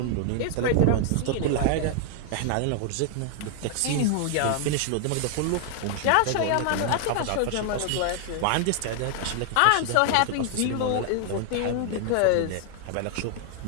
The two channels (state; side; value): different; both; correlation 0.00